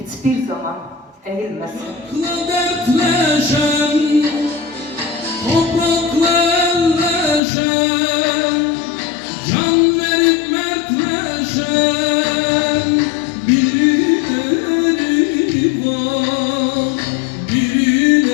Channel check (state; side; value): drops out; right; at 7.4 s